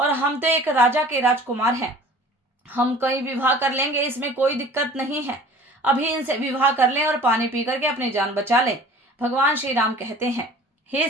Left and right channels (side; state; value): both; normal; correlation 0.46